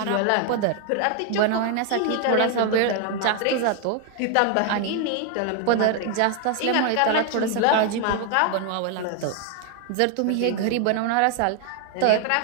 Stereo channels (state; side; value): different; both; correlation 0.00